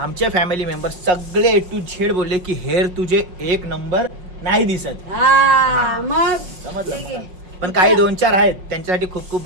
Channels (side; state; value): left; late; 5.3 ms